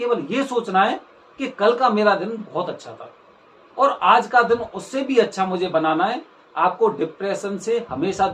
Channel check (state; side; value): identical; both; correlation 1.00